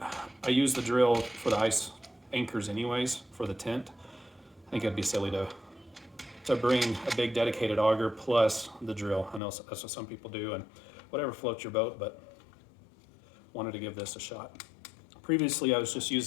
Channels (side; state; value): right; drops out; at 9.4 s